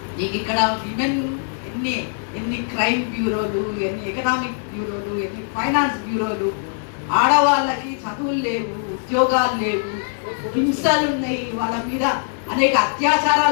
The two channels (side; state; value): right; silent; 65 dB below the other